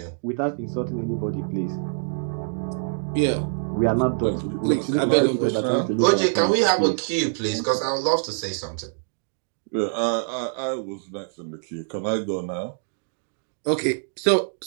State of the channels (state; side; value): silent; left; digital silence